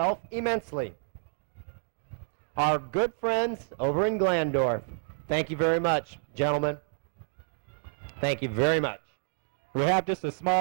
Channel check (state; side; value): silent; left; digital silence